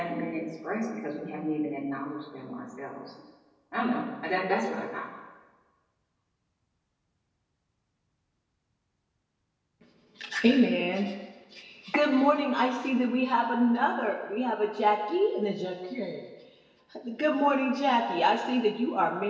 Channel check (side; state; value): both; identical; correlation 1.00